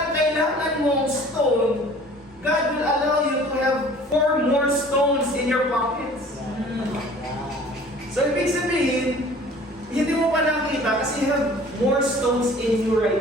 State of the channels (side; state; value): both; normal; correlation 0.49